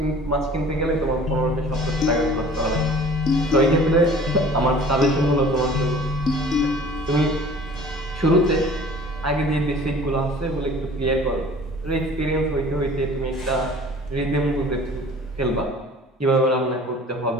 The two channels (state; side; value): normal; both; correlation 0.47